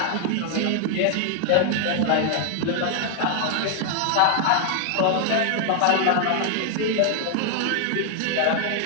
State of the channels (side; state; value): both; different; correlation 0.00